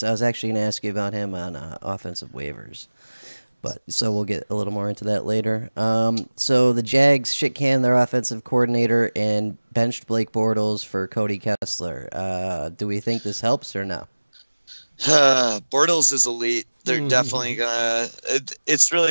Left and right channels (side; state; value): both; inverted; correlation -1.00